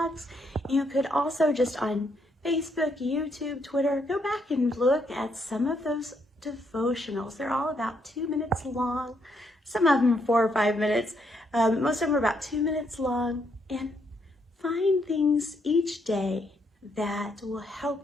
You could also just on Facebook, YouTube, Twitter, go back and look at some of those devotionals. They're all about 2 minutes long. Some of them are 4 or 5 minutes. Most of them are about 2 minutes long. And find things each day that will help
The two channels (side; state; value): both; normal; correlation 0.75